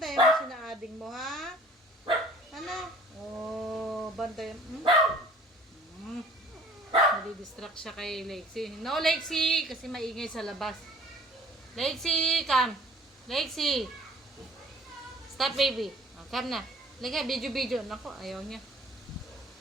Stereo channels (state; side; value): normal; both; correlation 0.52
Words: mo sinaading mo, ha? Ano? O, bantayan. Nadidistract siya kay Lexi. No, Lexi! Kasi maingay sa labas. Lexi, come. Lexi. Stop, baby. O, come na. Lagay, video. Naku, ayaw niya.